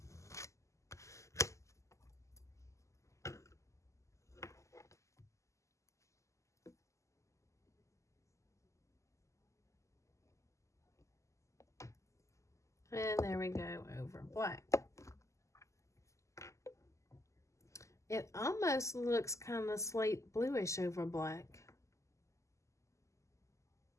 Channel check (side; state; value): right; late; 0.15 ms